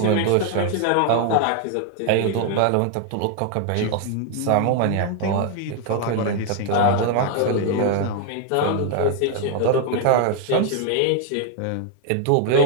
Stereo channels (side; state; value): both; different; correlation 0.00